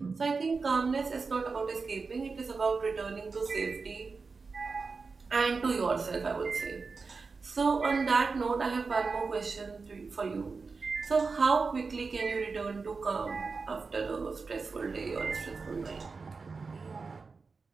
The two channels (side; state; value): left; quieter; 4.5 dB